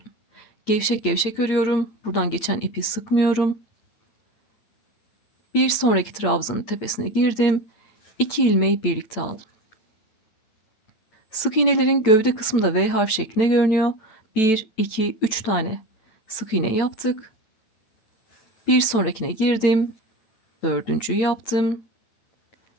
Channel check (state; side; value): late; right; 9.0 ms